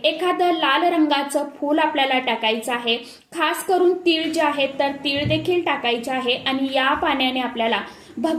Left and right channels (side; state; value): both; identical; correlation 1.00